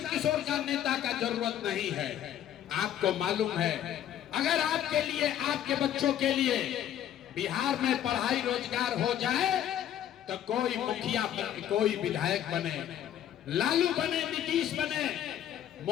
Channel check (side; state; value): right; quieter; 10.8 dB